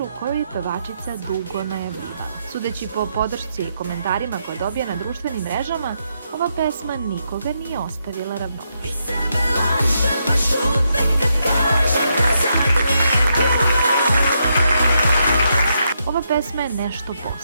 koju je pevačica dugo najavljivala. Sudeći po podršci i komentarima koje dobija na društvenim mrežama, ova pesma nikoga nije ostavila ravnodušnim. Ova pesma je nešto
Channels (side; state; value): both; inverted; correlation -0.80